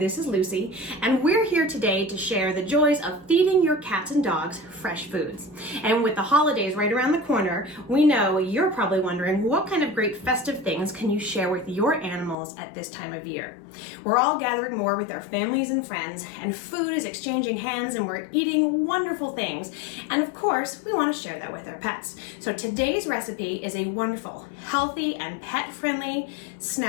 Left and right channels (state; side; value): drops out; right; at 12.4 s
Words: this is Lucy, and we're here today to share the joys of feeding your cats and dogs fresh foods. And with the holidays right around the corner, we know you're probably wondering what kind of great festive things can you share with your animals at this time of year. We're all gathering more with our families and friends, and food is exchanging hands, and we're eating wonderful things. And of course, we want to share that with our pets. So today's recipe is a wonderful, healthy, and pet-friendly